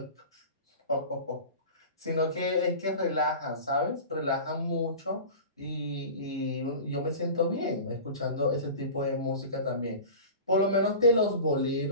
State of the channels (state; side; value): inverted; both; correlation -0.35